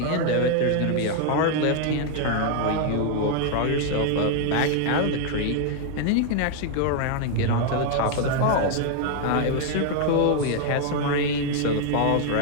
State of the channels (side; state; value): both; different; correlation 0.00